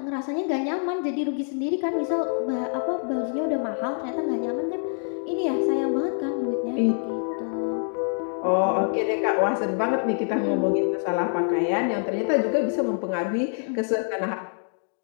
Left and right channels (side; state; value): right; silent; 56 dB below the other